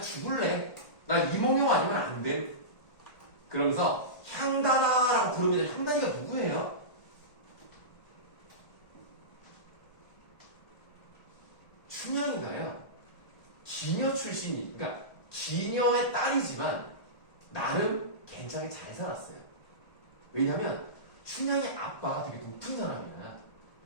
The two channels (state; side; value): late; right; 1.4 ms